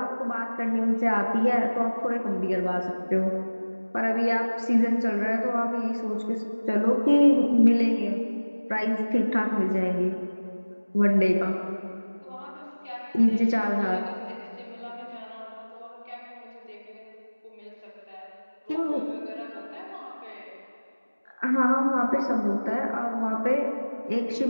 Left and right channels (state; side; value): inverted; both; correlation -1.00